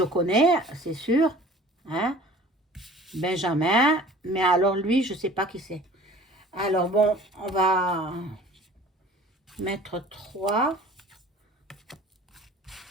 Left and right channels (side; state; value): both; normal; correlation 0.46